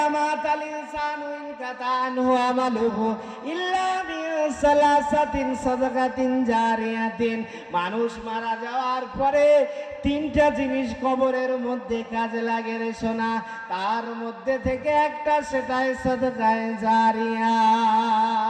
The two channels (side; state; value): both; identical; correlation 1.00